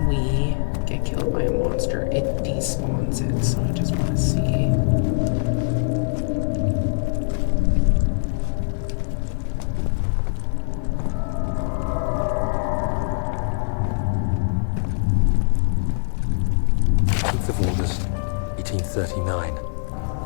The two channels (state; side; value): silent; right; digital silence